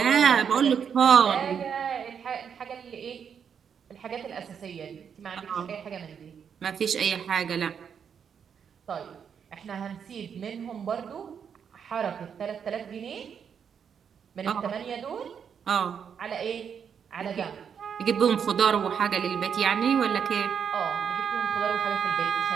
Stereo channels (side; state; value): left; quieter; 7.4 dB